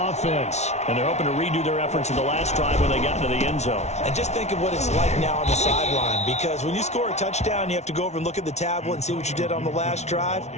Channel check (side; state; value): right; late; 0.32 ms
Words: And they're hoping to redo their efforts in the last drive when they got into the end zone. And just think of what it's like now on the sideline, because when you score a touchdown, you have to go over and look at the tablet and see what you did on the last drive.